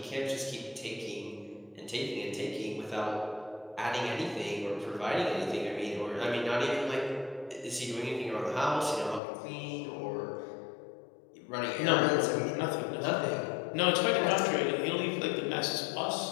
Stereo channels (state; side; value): drops out; right; at 9.2 s